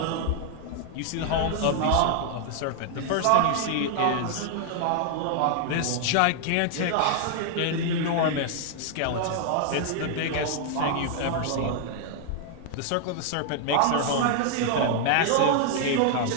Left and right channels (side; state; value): both; different; correlation 0.00